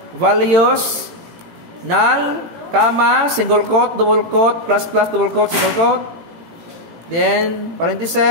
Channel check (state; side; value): late; left; 18 ms